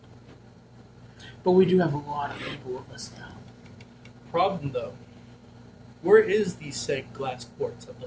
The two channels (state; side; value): identical; both; correlation 1.00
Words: But we do have a lot of people with us now. Problem though, where is the said glass quartz at the